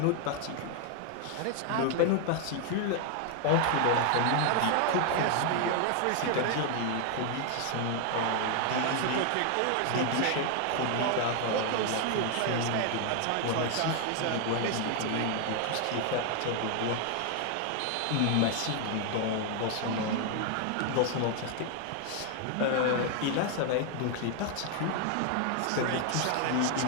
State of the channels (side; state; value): both; different; correlation 0.00